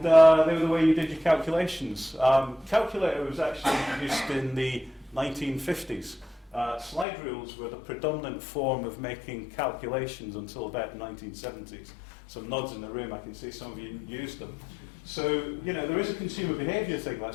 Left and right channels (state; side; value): drops out; right; at 7.1 s